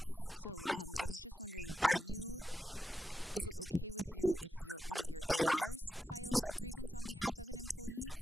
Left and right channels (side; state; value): both; normal; correlation 0.87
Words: So I was just wondering, is it okay with you if one of your ARs files a grievance on behalf of an employee,